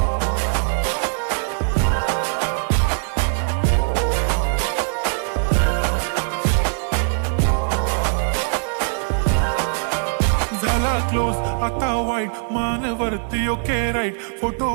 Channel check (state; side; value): silent; left; 63 dB below the other